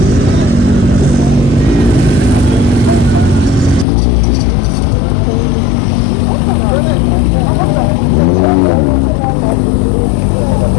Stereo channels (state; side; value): drops out; right; at 3.9 s